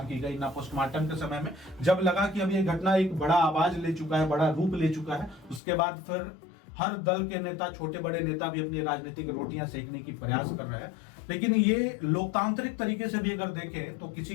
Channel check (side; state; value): right; drops out; at 5.6 s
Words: की गई, ना पोस्टमार्टम के समय में। जब लगा कि अब ये घटना एक बड़ा आवाज ले चुका है, बड़ा रूप ले चुका है, उसके बाद फिर हर दल के नेता, छोटे बड़े नेता भी अपनी राजनीतिक रोटियां सेकने की प्रयास कर रहे हैं। लेकिन ये लोकतांत्रिक तरीके से भी अगर देखें तो